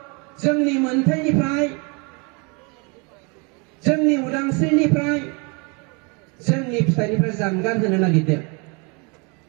जोंनि मोनथायनिफ्राय जोंनि उदांस्रिनिफ्राय जोंनि फिथाइनिफ्राय जानगार होनो नागिरदों।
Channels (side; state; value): left; quieter; 32.1 dB